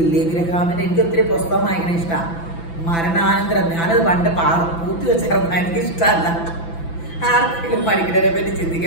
ഗ്രഹാമിന്റെ, എനിക്ക് ഒത്തിരി പുസ്തകം വായിക്കണ ഇഷ്ടമാണ്. മരണാനന്തരം ഞാനത് പണ്ട് പൂത്തി വെച്ചിരുന്ന എനിക്ക് ഇഷ്ടമല്ല. ആർക്കെങ്കിലും മരിക്കണതിനെ പറ്റി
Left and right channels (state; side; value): late; right; 6.0 ms